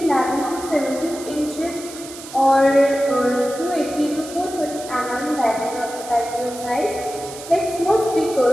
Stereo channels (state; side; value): noise; right; hiss, 14 dB below the sound